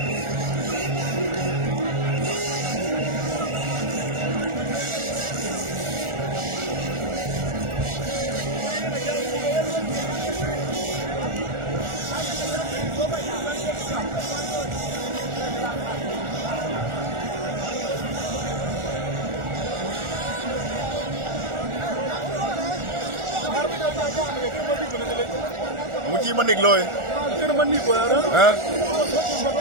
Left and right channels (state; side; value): late; left; 1.4 ms